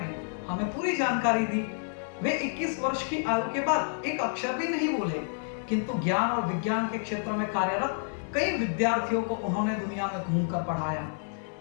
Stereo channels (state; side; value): silent; right; 58 dB below the other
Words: हमें पूरी जानकारी दी। वे 21 वर्ष की आयु के बाद एक अक्षर भी नहीं बोले, किंतु ज्ञान और विज्ञान के क्षेत्र में कार्यरत कई विद्यार्थियों को उन्होंने दुनिया में घूमकर पढ़ाया।